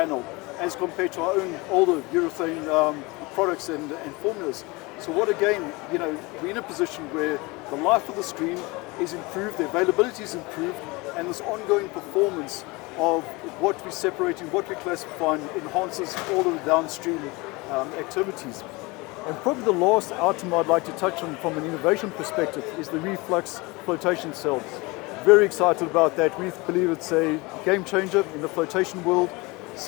as compared to our own older urethane products and formulas. So what again, we're in a position where the life of the screen is improved, the availability is improved, and this ongoing performance of what we're separating, what we're classifying enhances all of the downstream activities. And probably the last item I'd like to touch on from an innovation perspective is the reflux flotation cells. Very excited about that. We believe it's a game changer in the flotation world.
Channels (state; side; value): quieter; right; 24.6 dB